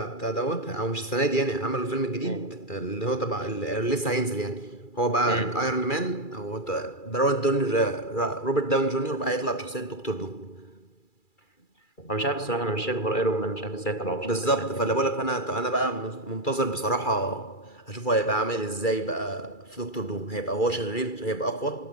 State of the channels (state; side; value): late; right; 2.3 ms